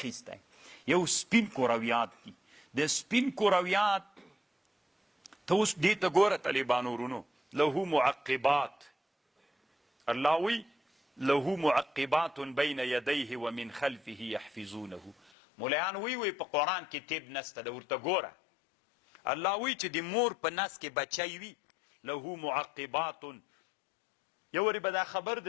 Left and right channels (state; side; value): drops out; right; at 15.3 s